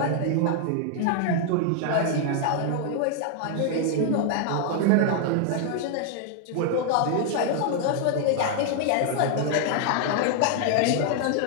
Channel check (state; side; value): different; both; correlation 0.00